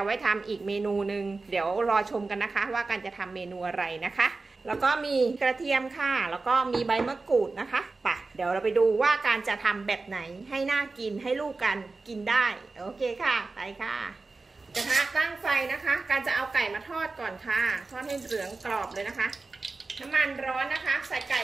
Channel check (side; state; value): left; quieter; 3.7 dB